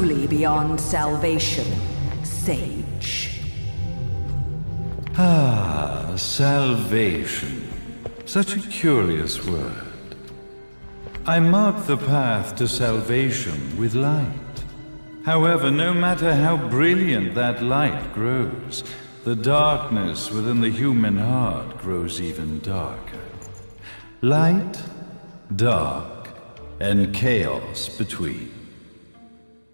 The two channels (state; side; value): inverted; both; correlation -1.00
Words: beyond salvation, sage. Salvation. Such a curious word. I mark the path to salvation with light. However, no matter how brilliant that light grows, the darkness within the human heart grows even darker. Light, dark, and chaos between.